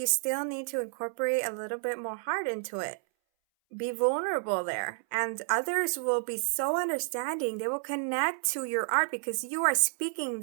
still need to incorporate a little bit more heart into it. be vulnerable there, and others will be so understanding. They will connect to your art because you are speaking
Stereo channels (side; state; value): left; silent; 58 dB below the other